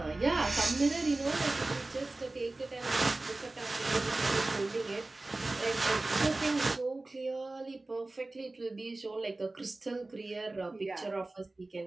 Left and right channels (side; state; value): left; quieter; 3.0 dB